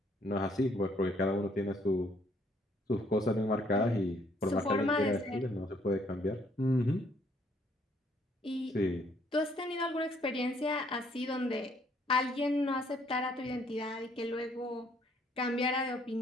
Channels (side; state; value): both; normal; correlation 0.66